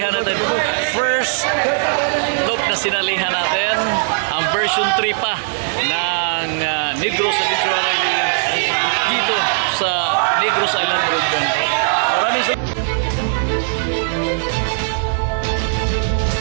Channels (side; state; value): left; silent; 66 dB below the other